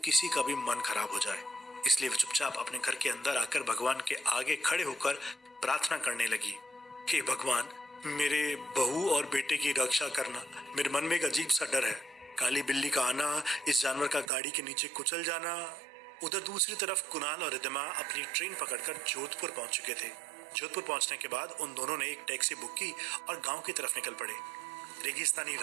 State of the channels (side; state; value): left; drops out; at 14.3 s